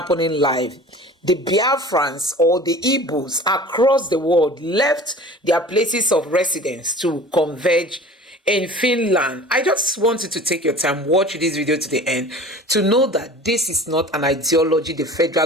live. The Biafrans or the Igbos across the world left their places of residence to converge in Finland. I just want you to take your time, watch this video to the end to know that this is not an ideology the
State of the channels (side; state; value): both; normal; correlation 0.42